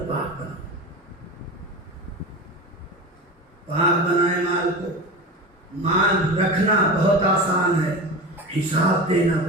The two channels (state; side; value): normal; both; correlation 0.28